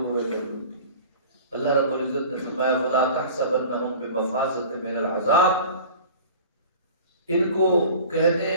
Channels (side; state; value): both; inverted; correlation -0.41